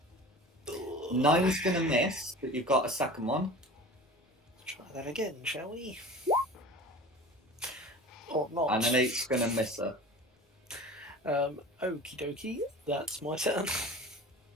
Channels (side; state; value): both; normal; correlation 0.38